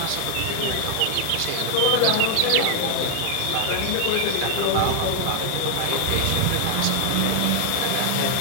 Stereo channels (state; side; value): different; both; correlation 0.00